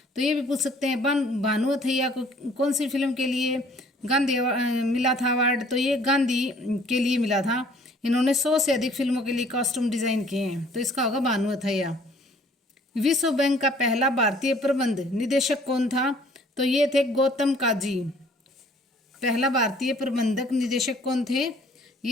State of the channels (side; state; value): both; normal; correlation 0.57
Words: तो ये भी पूछ सकते हैं भानु अथैया को कौन सी फिल्म के लिए गांधी मिला था अवार्ड? तो ये गांधी के लिए मिला था। इन्होंने 100 से अधिक फिल्मों के लिए कॉस्ट्यूम डिजाइन किए हैं। तो इसका होगा भानु अथैया। विश्व बैंक का पहला भारतीय प्रबंध निदेशक कौन था? तो ये थे गौतम काजी। पहला भारतीय प्रबंधक निदेशक कौन थे?